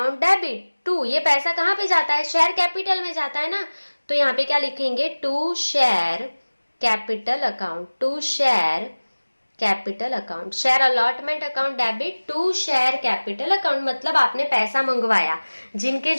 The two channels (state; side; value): inverted; both; correlation -1.00